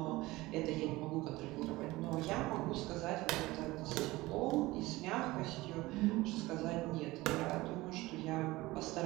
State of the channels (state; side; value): quieter; left; 19.7 dB